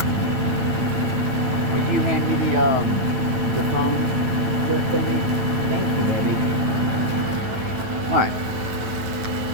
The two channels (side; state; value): left; late; 9.3 ms